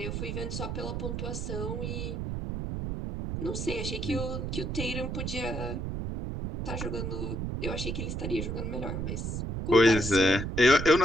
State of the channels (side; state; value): right; noise; rumble, 3 dB below the sound